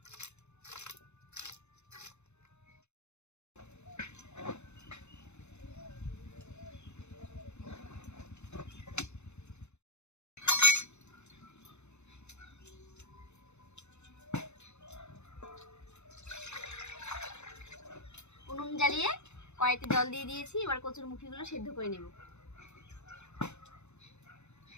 উনুন জ্বালিয়ে কড়াইতে জল দিয়ে দিয়েছি। এবার কচুর মুখিগুলো সেদ্ধ করে নেব।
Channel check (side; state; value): right; late; 0.82 ms